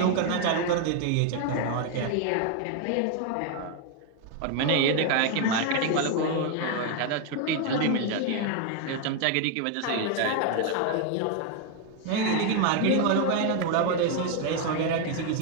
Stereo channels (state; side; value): different; both; correlation 0.01